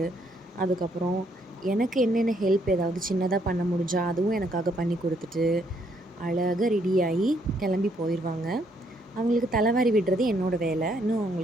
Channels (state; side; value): normal; both; correlation 0.71